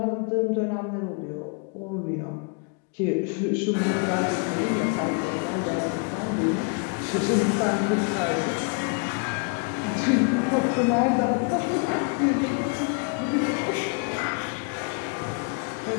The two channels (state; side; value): quieter; right; 35.1 dB